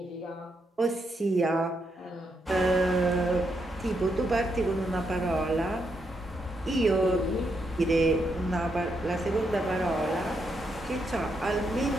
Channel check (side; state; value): both; normal; correlation 0.80